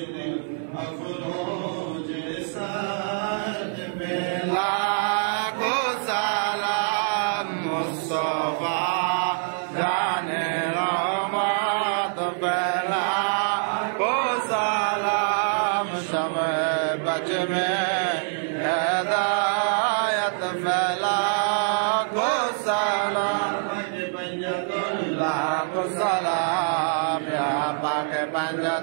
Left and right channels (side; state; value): left; silent; 58 dB below the other